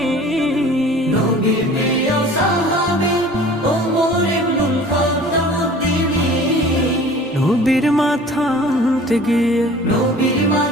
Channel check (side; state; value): both; normal; correlation 0.46